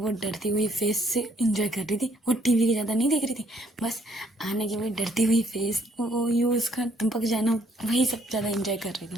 डरती हुई फेस से इंजॉय कर रही थी, वो टीवी की ज़्यादा नहीं देख रही थी, बस आना की वही डरती हुई फेस, वो यूज़ का टपक जाना, वही सब ज़्यादा इंजॉय कर रही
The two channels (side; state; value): both; normal; correlation 0.66